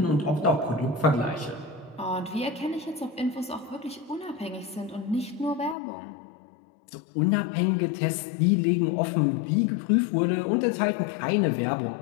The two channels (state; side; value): drops out; right; at 5.8 s